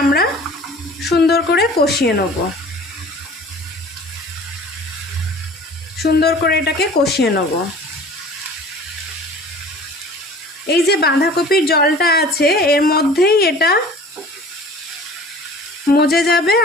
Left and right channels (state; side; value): normal; both; correlation 0.45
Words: আমরা সুন্দর করে কষিয়ে নেব। সুন্দর করে এটাকে কষিয়ে নেব। এই যে বাঁধাকপির জলটা আছে এর মধ্যেই এটা মজে যাবে